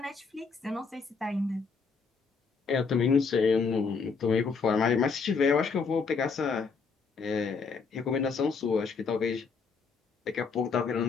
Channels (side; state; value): right; quieter; 5.0 dB